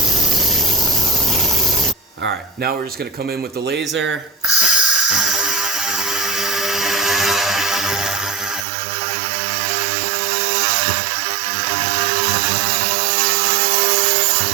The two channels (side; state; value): left; drops out; at 8.7 s